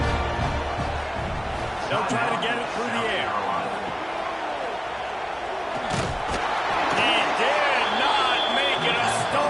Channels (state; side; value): identical; both; correlation 1.00